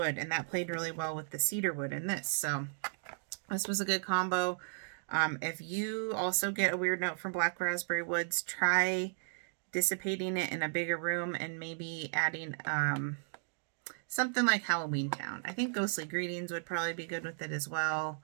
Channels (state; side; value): silent; left; digital silence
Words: and that played really well with the cedar wood in this. So this was a good combo. If you also get a weird note from black raspberry woods, try dissipating it in a bigger room and maybe adding something like Halloween Town. I think Ghostly Greetings would probably be good with it as well.